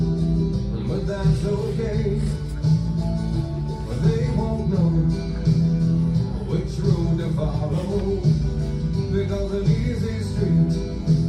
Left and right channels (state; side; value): identical; both; correlation 1.00